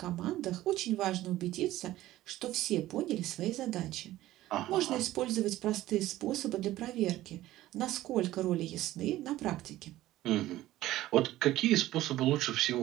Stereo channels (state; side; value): quieter; left; 15.4 dB